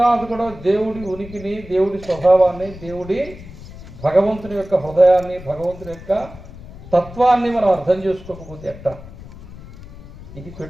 కూడా దేవుడి ఉనికిని, దేవుడి స్వభావాన్ని, భగవంతుని యొక్క హృదయాన్ని, భగవంతుని యొక్క తత్వాన్ని మనం అర్థం చేసుకోకపోతే ఎట్టా? ఇది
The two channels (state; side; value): noise; left; rumble, 16 dB below the sound